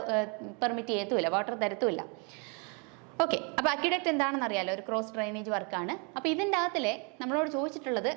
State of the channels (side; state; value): left; quieter; 35.0 dB